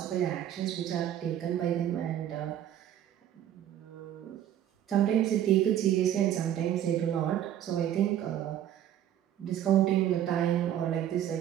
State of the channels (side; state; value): left; quieter; 11.0 dB